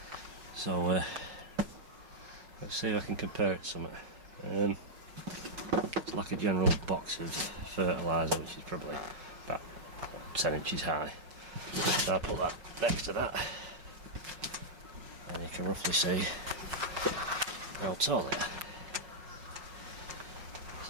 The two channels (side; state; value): left; late; 5.5 ms